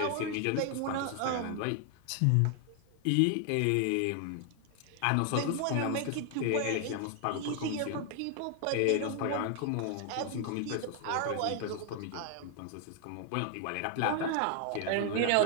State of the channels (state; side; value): different; both; correlation 0.00